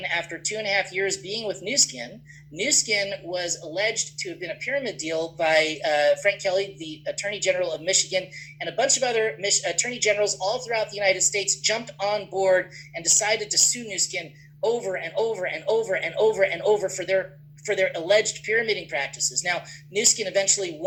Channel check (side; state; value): both; identical; correlation 1.00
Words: after 2.5 years being with Nu Skin, Nu Skin was alleged to have been a pyramid deal by Frank Kelly, the Attorney General of Michigan, and a bunch of other attorney generals all throughout the United States jumped on board and decided to sue Nu Skin over and over and over and over and over for their alleged pyramiding practices. Now, Nu Skin eventually